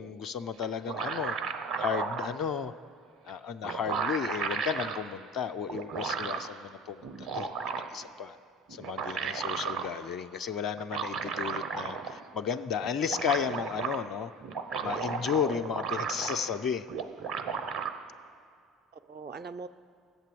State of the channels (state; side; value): normal; both; correlation 0.34